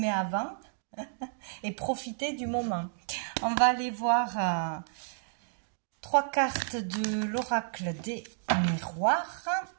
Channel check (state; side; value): silent; left; digital silence